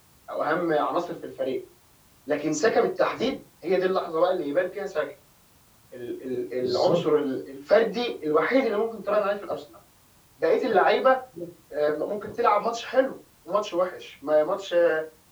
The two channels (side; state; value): both; identical; correlation 1.00